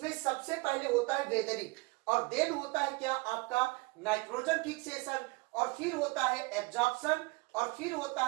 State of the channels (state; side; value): quieter; left; 26.2 dB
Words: सबसे पहले होता है वेदरिंग, और देन होता है क्या आपका नाइट्रोजन फिक्सेशन, और फिर होता है एब्जॉर्प्शन, और फिर होता